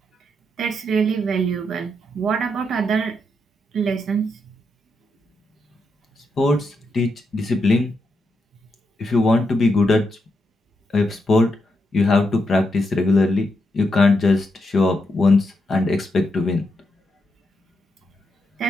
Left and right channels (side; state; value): both; normal; correlation 0.83